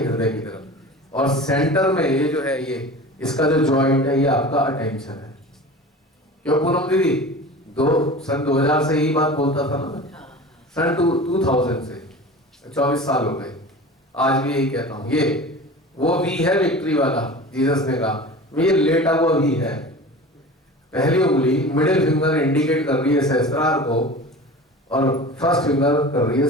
हृदय की तरफ, और सेंटर में ये जो है, ये इसका जो जॉइंट है, ये आपका अटेंशन है। क्यों पूनम दीदी? सन 2000 से यही बात बोलता था ना मैं, सन 2000 से 24 साल हो गए, आज भी यही कहता हूँ। ये वो वी है विक्ट्री वाला, जीसस ने कहा ये लेटा हुआ वी है। पहली उंगली मिडिल फिंगर इंडिकेट कर रही है सहस्त्रार को, और फर्स्ट फिंगर कर रही है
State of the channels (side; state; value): both; normal; correlation 0.36